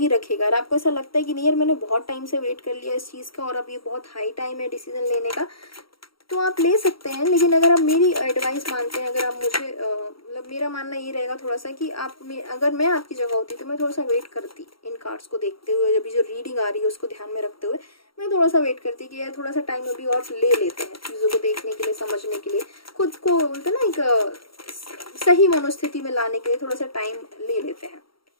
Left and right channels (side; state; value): right; late; 0.74 ms